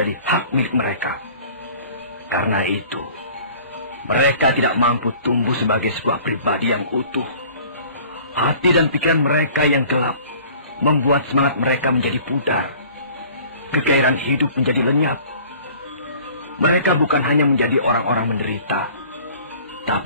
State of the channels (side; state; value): both; inverted; correlation -0.49